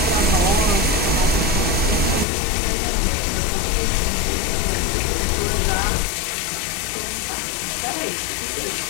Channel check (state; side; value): drops out; right; at 2.2 s